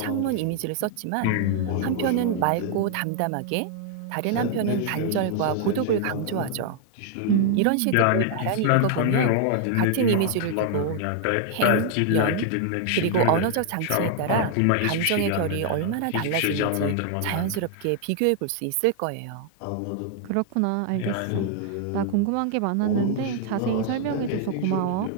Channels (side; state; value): both; different; correlation 0.00